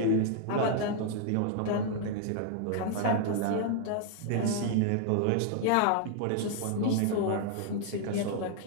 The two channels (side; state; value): both; different; correlation 0.00